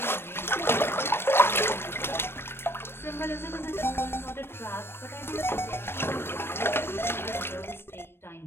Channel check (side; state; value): right; late; 0.11 ms